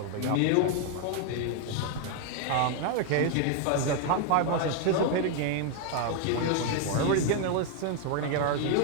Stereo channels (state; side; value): different; both; correlation 0.01